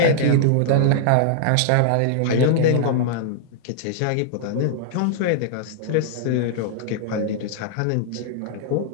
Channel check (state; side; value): different; both; correlation -0.01